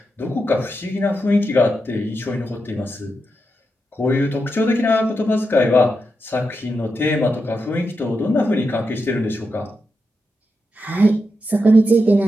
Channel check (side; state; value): both; normal; correlation 0.86